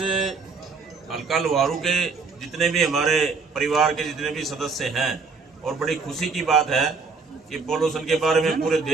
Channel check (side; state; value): left; quieter; 4.7 dB